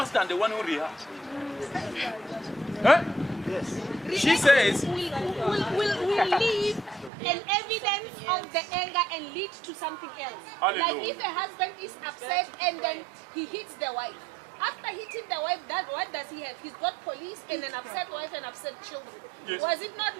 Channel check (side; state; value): left; drops out; at 7.1 s